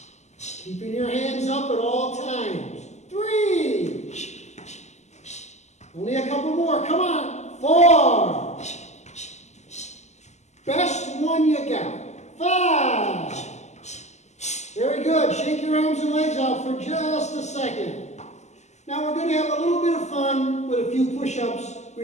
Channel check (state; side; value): late; right; 0.33 ms